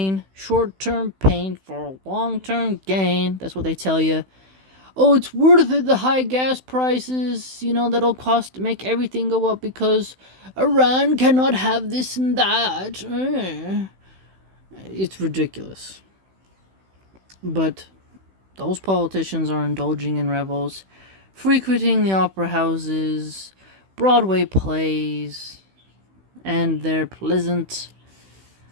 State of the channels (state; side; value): late; left; 16 ms